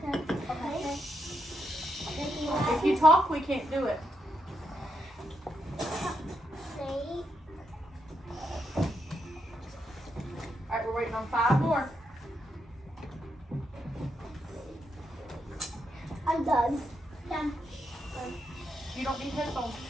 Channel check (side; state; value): both; normal; correlation 0.81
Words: If you talk, we can't do it. Snake. Alright, we're waiting on 5 more. I'm done. Done. You don't need headphones.